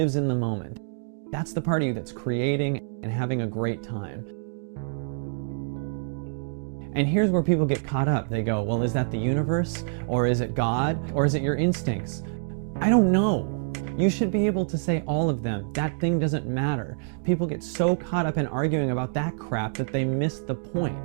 in the moment. That's the part of you that's creating and having a great time. And here's where people get caught up. They go, well, is that the universe? Or is it God? Or is it your instincts? I don't know. You should be able to say all of them. That thing doesn't matter. People get so caught up in arguing about that crap that they miss the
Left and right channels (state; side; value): silent; left; digital silence